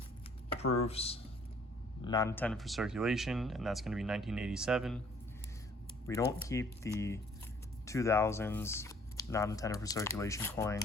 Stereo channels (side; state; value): both; normal; correlation 0.58